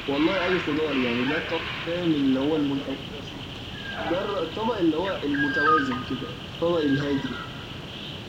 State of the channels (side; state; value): both; identical; correlation 1.00